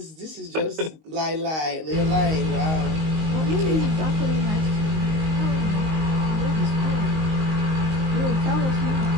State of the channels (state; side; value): late; left; 19 ms